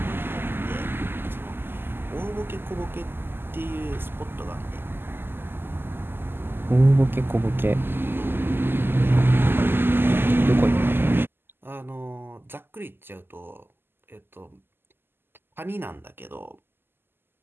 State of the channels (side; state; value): left; late; 0.10 ms